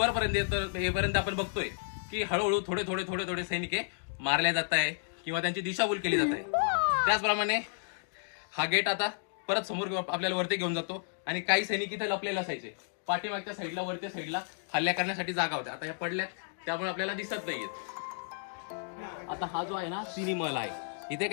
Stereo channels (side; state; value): right; silent; digital silence